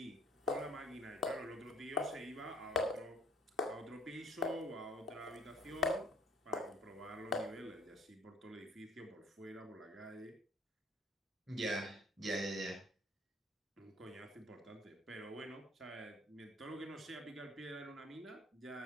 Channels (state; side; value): normal; both; correlation 0.52